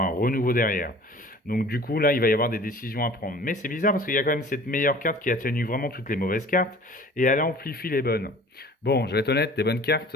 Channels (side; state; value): both; normal; correlation 0.47